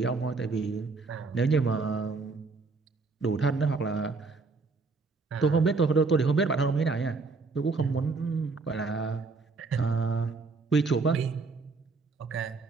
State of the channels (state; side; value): quieter; left; 4.1 dB